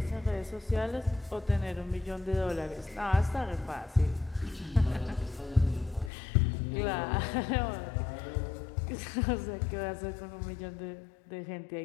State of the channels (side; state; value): right; drops out; at 6.1 s